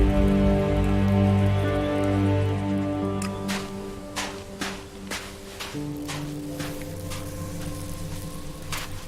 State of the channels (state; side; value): identical; both; correlation 1.00